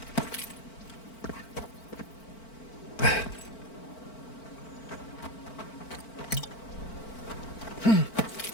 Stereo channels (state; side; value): late; right; 4.5 ms